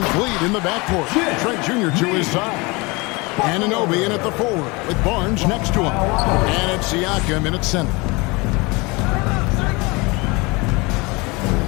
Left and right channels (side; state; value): right; quieter; 25.9 dB